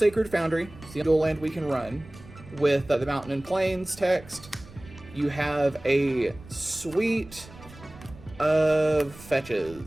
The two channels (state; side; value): noise; right; rumble, 19 dB below the sound